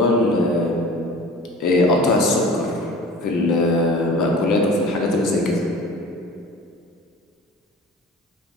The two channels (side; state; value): both; normal; correlation 0.41